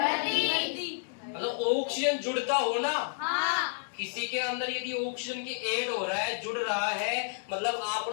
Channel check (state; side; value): silent; right; digital silence